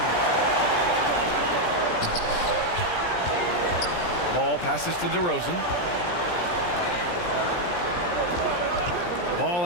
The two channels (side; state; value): right; late; 17 ms